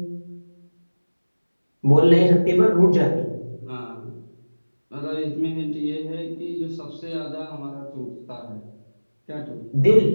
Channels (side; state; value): both; inverted; correlation -1.00